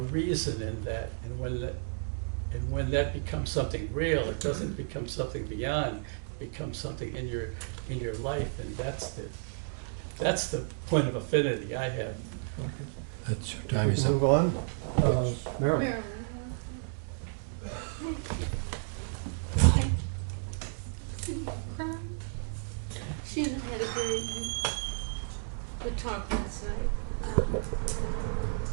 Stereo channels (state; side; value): silent; left; digital silence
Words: reason in that, and when that becomes something real, it doesn't become something beyond, it becomes something in your life, and that's the point of affinity I have. That's your time is up. Move on. Marilyn. She and I had a very good talk last night.